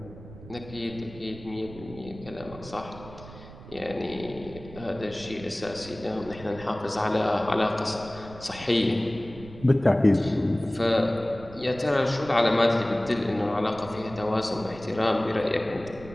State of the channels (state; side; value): noise; right; rumble, 16 dB below the sound